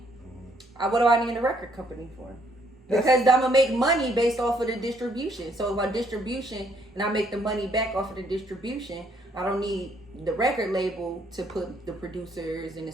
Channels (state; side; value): normal; both; correlation 0.68